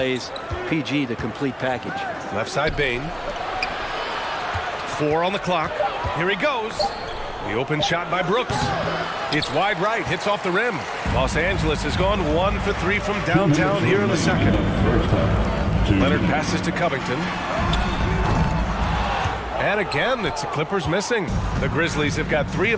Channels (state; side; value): identical; both; correlation 1.00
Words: PG, the complete package. Left side, Bane. 4 on the clock. Here he goes. The open shot by Brooks. It's wide right, hits off the rim. Los Angeles has gone 1 for 3 from downtown here in the second. Leonard passes to Covington. And again, it's the Clippers missing. The Grizzlies have got 3